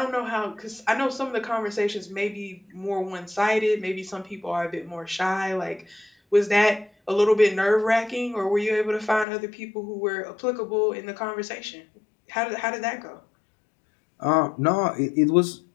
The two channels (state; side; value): drops out; right; at 9.2 s